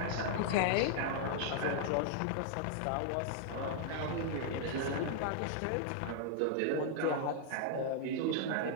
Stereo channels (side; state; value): both; different; correlation -0.01